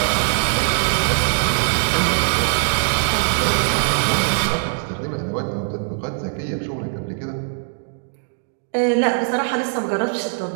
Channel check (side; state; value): left; silent; digital silence